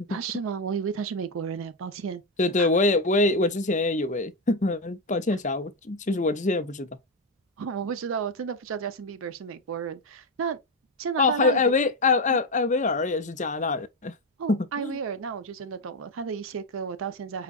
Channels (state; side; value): normal; both; correlation 0.09